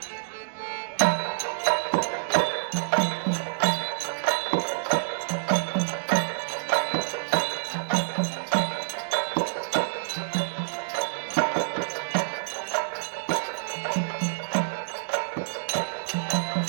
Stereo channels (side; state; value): left; silent; digital silence